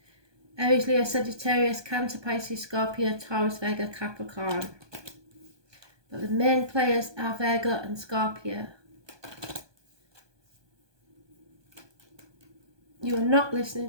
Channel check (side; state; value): left; late; 1.2 ms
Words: Aries, Leo, Sagittarius, Cancer, Pisces, Scorpio, Taurus, Virgo, Capricorn. But the main players are Virgo and Scorpio. You are not